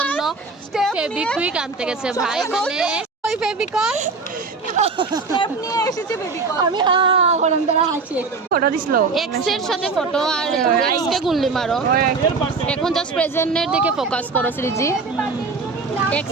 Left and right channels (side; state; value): left; quieter; 4.3 dB